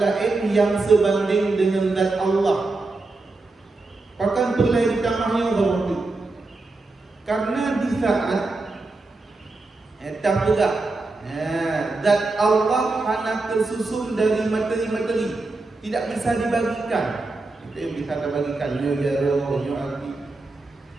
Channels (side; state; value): left; quieter; 3.4 dB